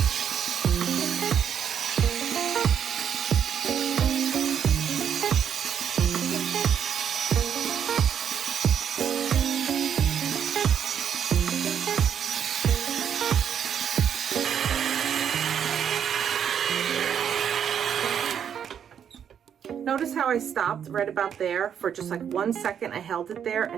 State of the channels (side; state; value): left; quieter; 8.4 dB